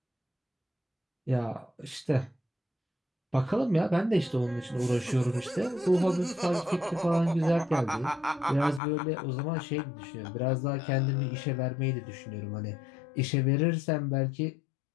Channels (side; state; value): right; drops out; at 8.8 s